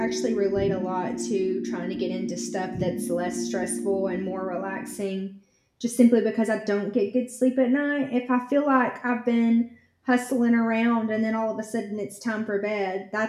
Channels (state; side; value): identical; both; correlation 1.00